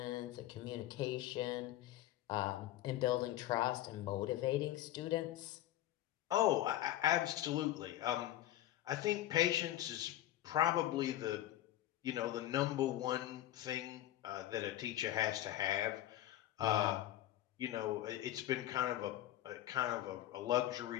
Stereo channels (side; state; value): right; quieter; 13.7 dB